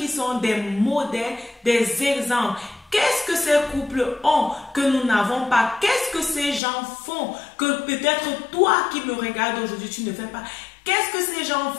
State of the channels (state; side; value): drops out; right; at 6.6 s